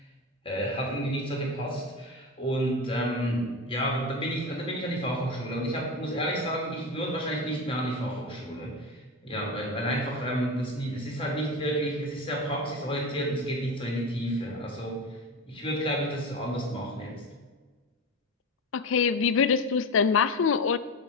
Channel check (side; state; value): both; normal; correlation 0.23